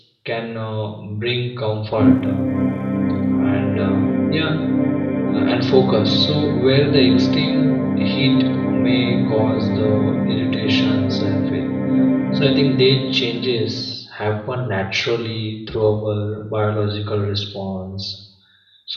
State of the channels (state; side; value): identical; both; correlation 1.00